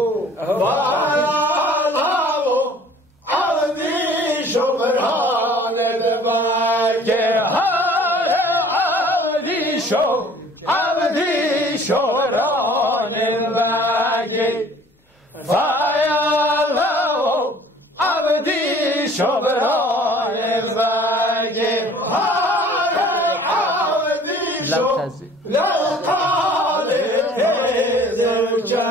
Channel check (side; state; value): both; normal; correlation 0.51